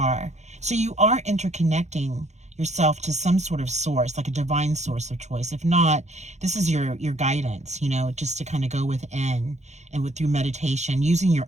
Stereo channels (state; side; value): late; left; 0.33 ms